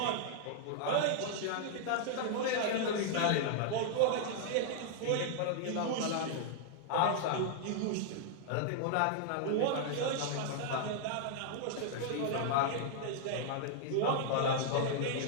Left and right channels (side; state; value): both; different; correlation -0.01